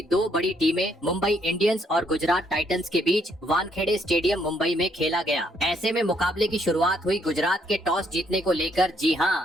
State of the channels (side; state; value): both; normal; correlation 0.71